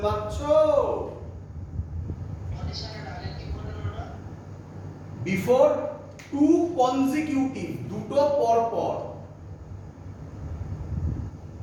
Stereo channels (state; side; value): identical; both; correlation 1.00